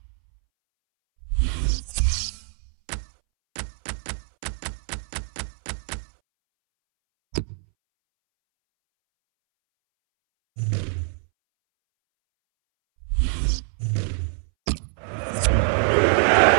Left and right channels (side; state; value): left; silent; 62 dB below the other